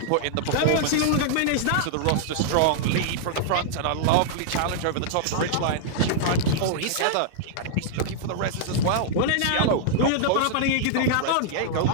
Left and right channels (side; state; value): both; different; correlation -0.01